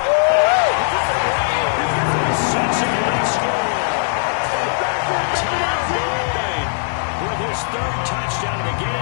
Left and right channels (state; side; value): silent; right; digital silence